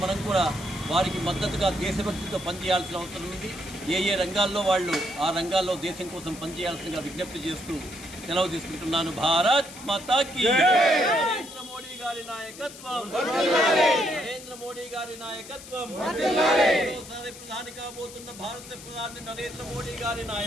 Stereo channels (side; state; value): left; noise; hiss, 16 dB below the sound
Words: మనం కూడా వారికి మద్దతుగా దేశభక్తితో పనిచేయాల్సిన అవసరం ఉంది. ఏ రంగాల్లో వాళ్ళు ఆ రంగాల్లో దేశం కోసం పనిచేయాల్సిందిగా విజ్ఞప్తి చేస్తూ సెలవు తీసుకుంటున్నాను. భారత్ మాతాకి నరేంద్ర మోడీ గారి నాయకత్వం, నరేంద్ర మోడీ గారి నాయకత్వం, మరోసారి ప్రధాని కాబోతున్న భారత ప్రధాని నరేంద్ర మోడీ గారి